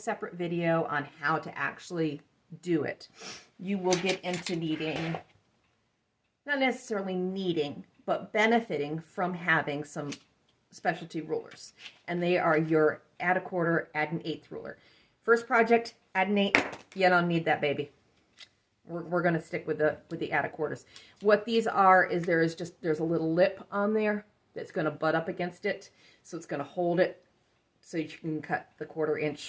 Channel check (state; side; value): identical; both; correlation 1.00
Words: video on how to actually do it, you will get into needing, not necessarily needing, but benefiting from having some specialty rulers. And they are your add a quarter, add an eighth ruler. First project, add an eighth, you don't need that baby. We're going to stick with the add a quarters. What these are is there's a little lip on there that's going to butt up against it, so it's going to hold it so you can cut the 1/4